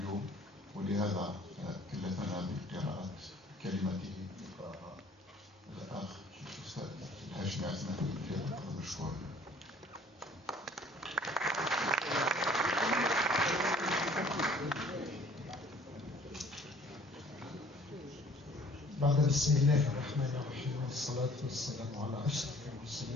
ولهذا كلفنا بقراءة كلمته الأخ الأستاذ الهاشمي عثمان فليتفضل مشكورا. بعد بسم الله الرحمن الرحيم والصلاة والسلام على أشرف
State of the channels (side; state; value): both; normal; correlation 0.54